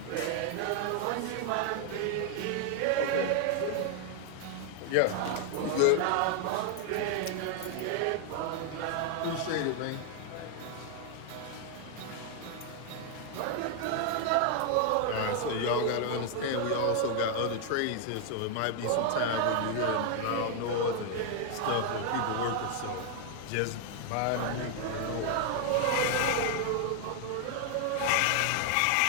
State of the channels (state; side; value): different; both; correlation 0.00